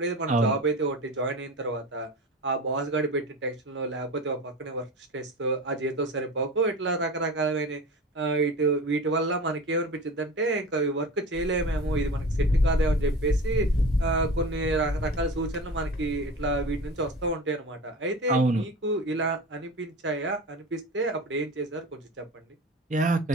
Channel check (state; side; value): normal; both; correlation 0.33